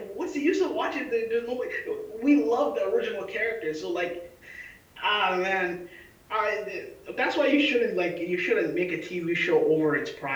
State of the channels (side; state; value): both; identical; correlation 1.00